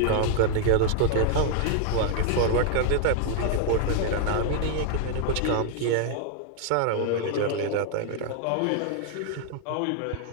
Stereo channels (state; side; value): different; both; correlation 0.00